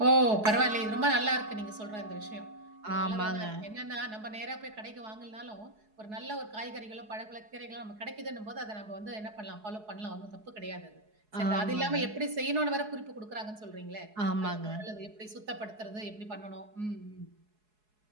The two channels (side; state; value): left; late; 4.7 ms